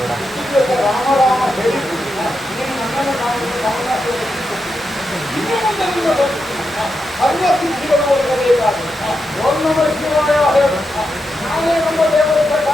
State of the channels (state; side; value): normal; both; correlation 0.86